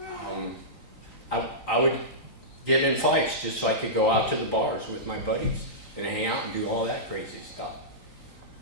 I would get in fights just so I could go out to the bars with my buddies and hang out and do all that crazy stuff.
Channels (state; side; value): late; right; 3.9 ms